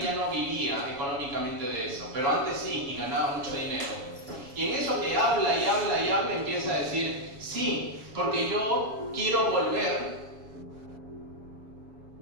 ya no vivía económicamente de eso. Pero antes sí, y ganaba mucho dinero. Y en eso que habla y habla y habla, empieza a decir, sí, porque yo quiero volver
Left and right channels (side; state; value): left; late; 7.1 ms